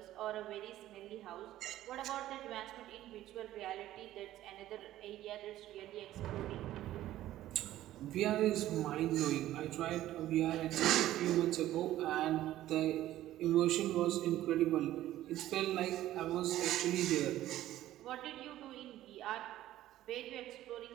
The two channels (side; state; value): left; quieter; 14.0 dB